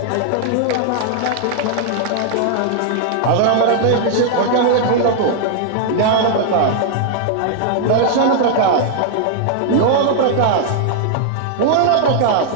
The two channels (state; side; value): different; both; correlation 0.00